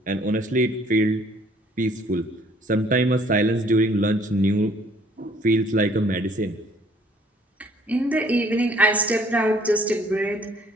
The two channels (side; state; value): both; normal; correlation 0.60